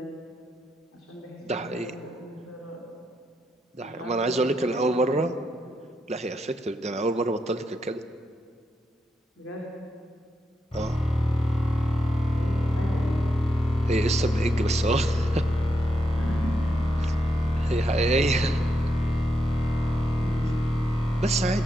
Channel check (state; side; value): normal; both; correlation 0.83